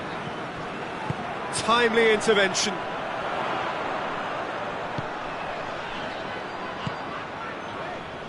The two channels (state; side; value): identical; both; correlation 1.00